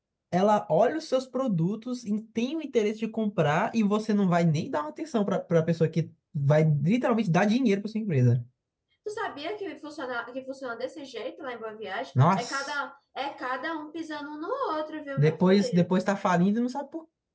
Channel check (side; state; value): both; identical; correlation 1.00